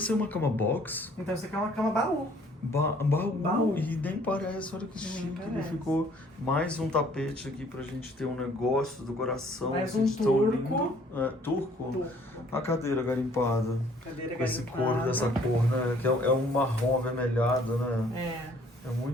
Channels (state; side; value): normal; both; correlation 0.59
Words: é uma cama box? Então isso aqui é uma cama baú. Baú. Baú. E nem parece, olha que Nem chique. Ele parece. ficou mais um tapete aqui pra gente ter um negócio do coração. Mais assim, um de tão turco. lindo. É, turco? Turco. A cadeira garimpada. Cadeira Com esse garimpada. couro dessa cor, né? Que é um marrom avermelhado, né? É